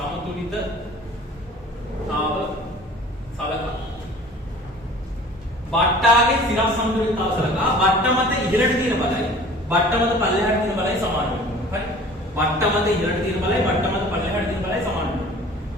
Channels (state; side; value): normal; both; correlation 0.46